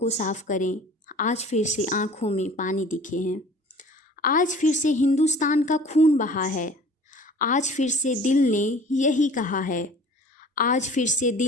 साफ़ करें, आज फिर से आँखों में पानी दिखे हैं। आज फिर से हिंदुस्तान का खून बहा है, आज फिर से दिल ने यही कहा है, आज फिर से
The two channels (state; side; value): normal; both; correlation 0.47